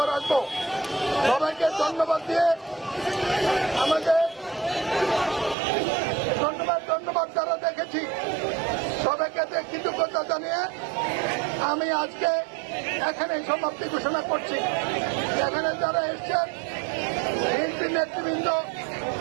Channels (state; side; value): drops out; left; at 5.6 s